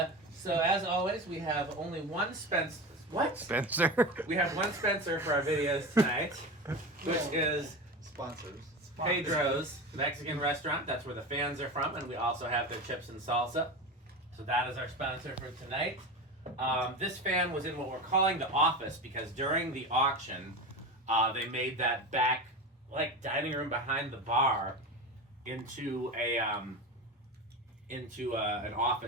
so, as always, we have only one Spencer. What? Spencer. We have one Spencer for our videos tonight, which is sponsors. Pedro's Mexican restaurant. That's where the fans are from, and we also have their chips and salsa. So that is our sponsor for tonight. This fan was in what we're calling the office because during the auction, they made that back dining room behind the bar into an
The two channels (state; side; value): normal; both; correlation 0.25